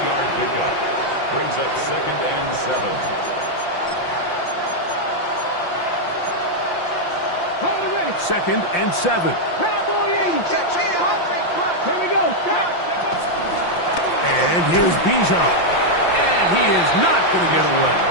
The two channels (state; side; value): late; right; 5.8 ms